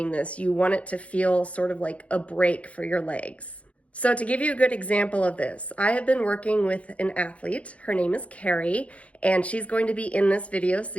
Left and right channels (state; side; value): late; right; 0.064 ms